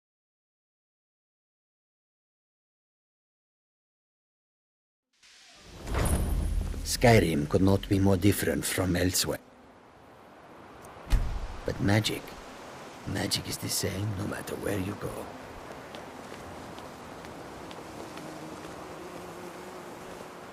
Skyrim could not be more different from elsewhere. But magic is the same no matter where you go.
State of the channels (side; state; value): both; identical; correlation 1.00